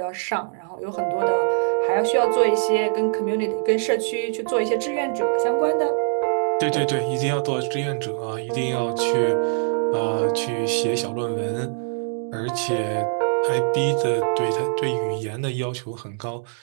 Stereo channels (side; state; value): left; silent; 63 dB below the other